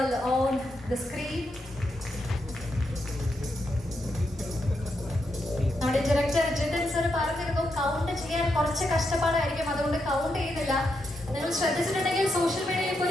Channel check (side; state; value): both; normal; correlation 0.83